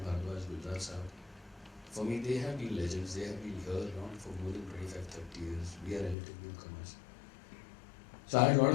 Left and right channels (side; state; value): right; drops out; at 6.2 s